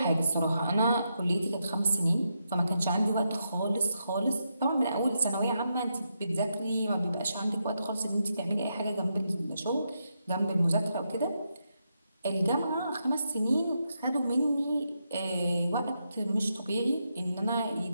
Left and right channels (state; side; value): inverted; both; correlation -0.83